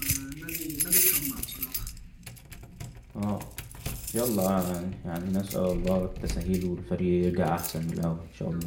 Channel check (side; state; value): both; identical; correlation 1.00